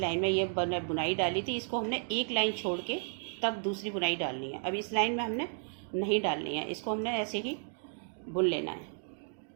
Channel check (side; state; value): left; silent; 56 dB below the other